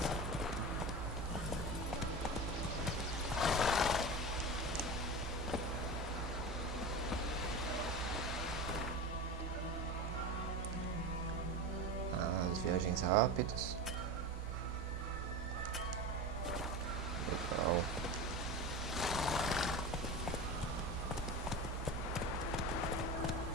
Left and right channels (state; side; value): normal; both; correlation 0.27